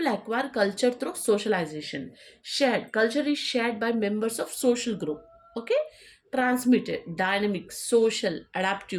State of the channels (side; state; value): both; identical; correlation 1.00